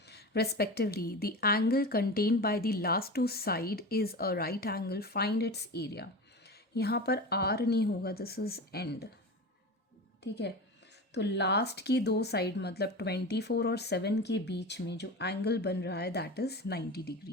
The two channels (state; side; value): normal; both; correlation 0.28